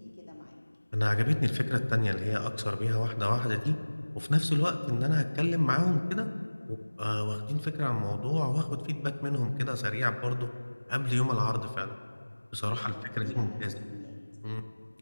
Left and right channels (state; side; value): inverted; both; correlation -1.00